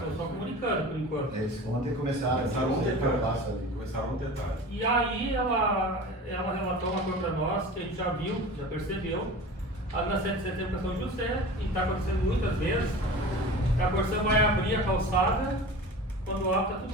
só comunicando por enquanto. Eles ontem começaram Começaram eu passo ali. Começaram um detalhe. E aí ela relatou uma coisa para nós que a gente já viu, já percebeu. Ali na 7 de setembro para São José, e está acontecendo muitas vezes, a Corsã vai abrir a calçada, quando abre está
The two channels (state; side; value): normal; both; correlation 0.36